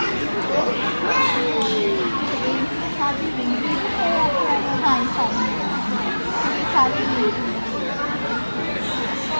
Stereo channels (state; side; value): inverted; both; correlation -1.00